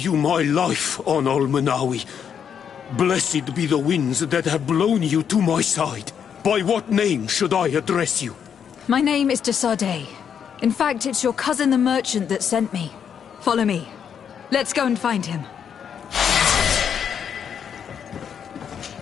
my life, on Almanawi. Blessed be the winds that have blown you to my side. By what name should I address you? My name is Desade. In fact, it's your cousin the merchant that sent me. Follow me. Let's go and find him.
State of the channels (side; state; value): right; quieter; 7.9 dB